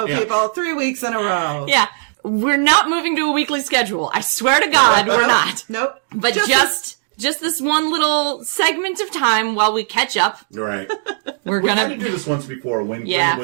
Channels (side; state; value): left; silent; digital silence